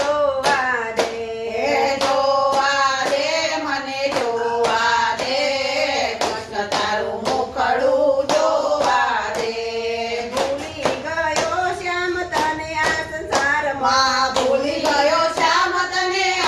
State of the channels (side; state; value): both; identical; correlation 1.00